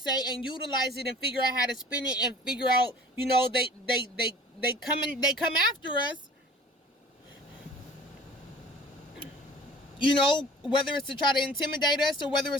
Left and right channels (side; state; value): both; normal; correlation 0.46